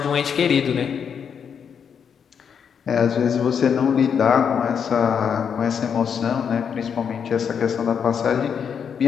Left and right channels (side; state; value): right; quieter; 7.3 dB